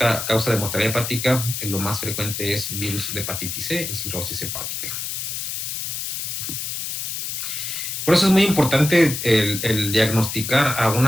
causa de mortalidad hepática, lo más frecuente es virus de hepatitis C y cirrosis hepática. Por eso es muy importante el diagnosticar a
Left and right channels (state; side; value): noise; left; hiss, 4 dB below the sound